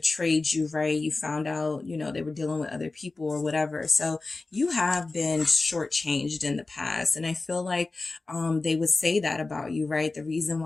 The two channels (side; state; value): right; quieter; 3.5 dB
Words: you, right? You found out, you know, they were dealing with other people or whatever. So you have been shortchanged in the past. And I feel like they would say that about you, right? The reason